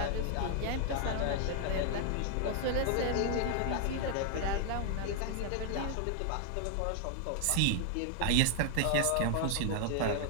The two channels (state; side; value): different; both; correlation 0.00